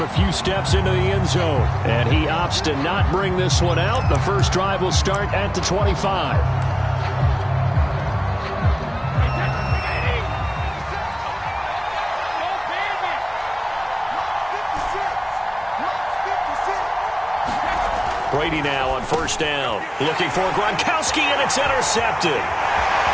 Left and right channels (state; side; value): identical; both; correlation 1.00